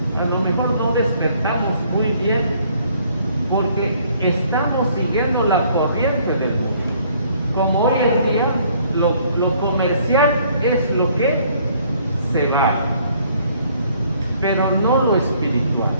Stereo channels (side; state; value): both; inverted; correlation -0.62